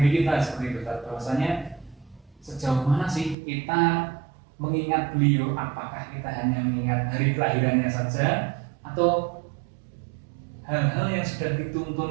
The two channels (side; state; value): left; drops out; at 3.4 s